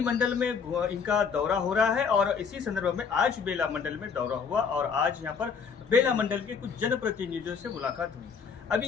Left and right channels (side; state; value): right; quieter; 6.1 dB